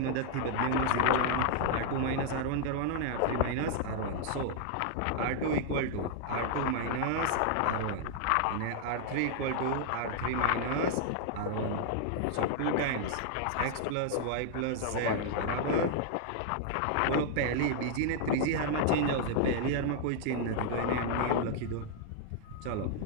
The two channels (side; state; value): both; different; correlation -0.01